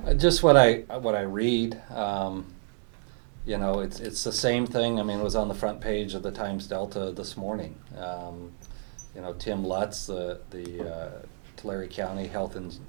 Just what I read, it's the same thing. I mean, it was on the front page of the Times Delta this morning. Tim Lutz, the Tulare County Health and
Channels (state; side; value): silent; left; digital silence